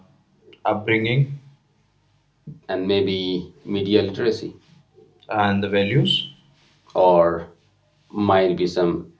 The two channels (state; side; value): identical; both; correlation 1.00